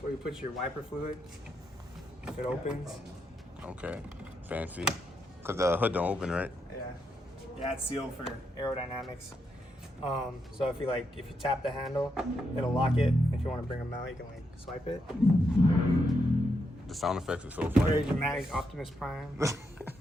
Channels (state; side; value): normal; both; correlation 0.81